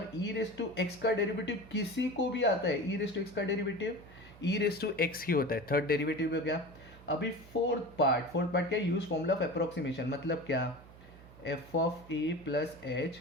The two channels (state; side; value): noise; right; hum, 20 dB below the sound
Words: e रेस टू x का डेरिवेटिव किसी को भी आता है, e रेस टू x का derivative e raise to x ही होता है, थर्ड डेरिवेटिव हो गया। अभी फोर्थ पार्ट क्या, यूज फॉर्मूला ऑफ अप्रोक्सीमेशन, मतलब क्या, f of a plus H